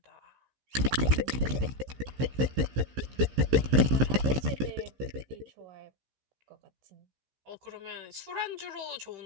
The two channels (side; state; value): left; late; 15 ms